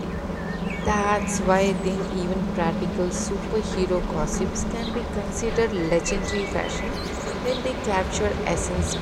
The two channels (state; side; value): identical; both; correlation 1.00